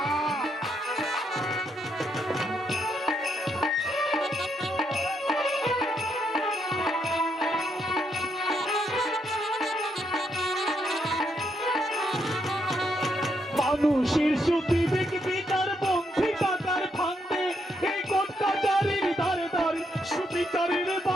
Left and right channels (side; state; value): both; normal; correlation 0.77